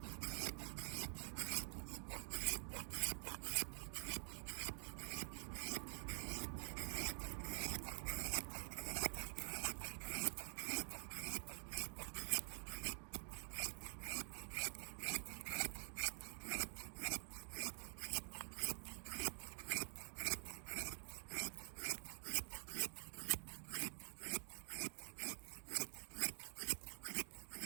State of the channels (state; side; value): silent; left; digital silence